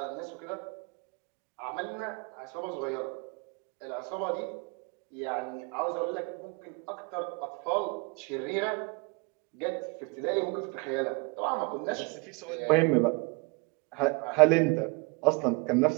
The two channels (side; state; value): left; quieter; 30.0 dB